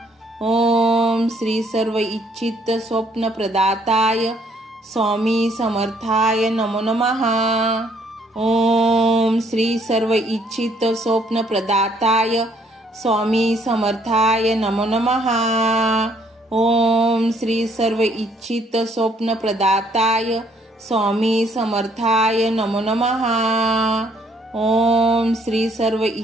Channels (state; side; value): normal; both; correlation 0.65